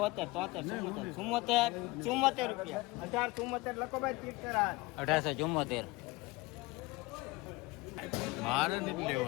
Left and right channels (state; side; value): quieter; right; 22.0 dB